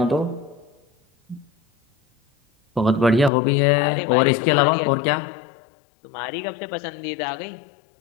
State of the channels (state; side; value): drops out; right; at 3.3 s